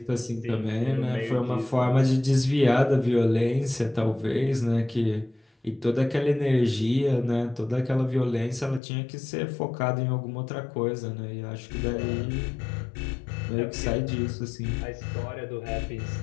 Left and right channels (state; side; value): drops out; right; at 8.8 s